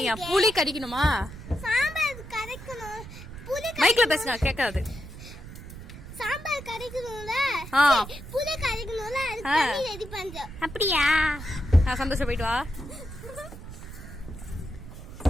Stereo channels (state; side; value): noise; right; rumble, 13 dB below the sound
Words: புளி கரைக்கணுமா? சாம்பார் கரைக்கணும். புளி மைக்ல பேசுங்க, கேட்காது. சாம்பார் கரைக்கணும்ல, புளி கரைக்கணும்ல, அது தண்ணி ரெடி பண்றோம். அப்படியா? சந்தோஷம், போயிட்டு வா.